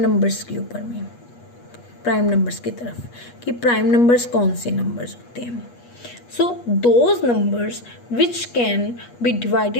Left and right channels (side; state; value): right; late; 8.3 ms